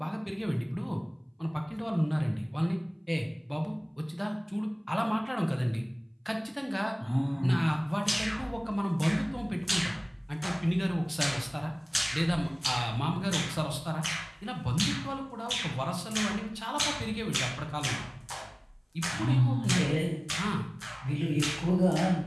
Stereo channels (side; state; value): both; identical; correlation 1.00